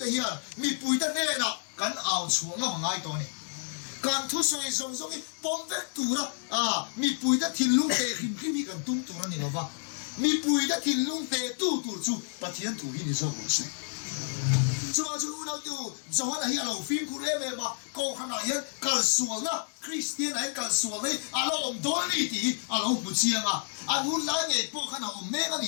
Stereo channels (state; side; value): silent; right; digital silence